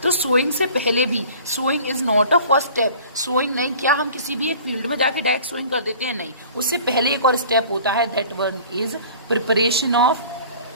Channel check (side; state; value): both; inverted; correlation -0.46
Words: तो सोइंग से पहले भी, sowing is not a first step. Sowing नहीं, क्या हम किसी भी एक फील्ड में जाके डायरेक्ट सोइंग कर देते हैं? नहीं. उससे पहले एक और स्टेप होता है, that one is preparation